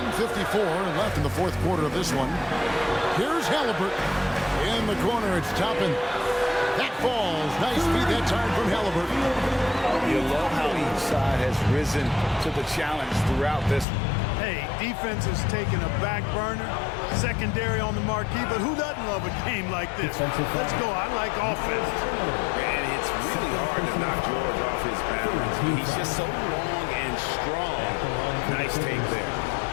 left in the fourth quarter of this one. Here's Halliburton. In the corner, it's Toppin. That falls. Nice feed that time from Halliburton. You love how each side has risen to the challenge throughout this one. Hey, defense has taken a back burner, secondary on the marquee, but who doesn't love a game like this? Let's go. I like offense. And it's really hard to knock George off his balance. He's just so long and strong. Nice take there.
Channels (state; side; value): drops out; right; at 13.9 s